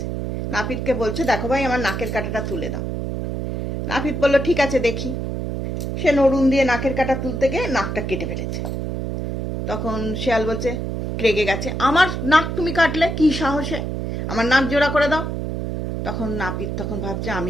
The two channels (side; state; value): right; noise; hum, 3 dB below the sound